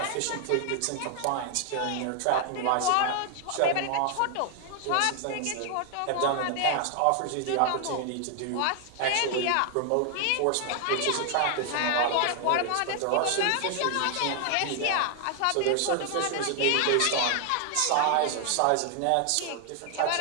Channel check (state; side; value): different; both; correlation 0.00